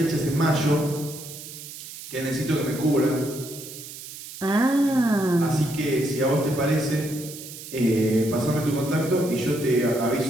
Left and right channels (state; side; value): noise; right; hiss, 13 dB below the sound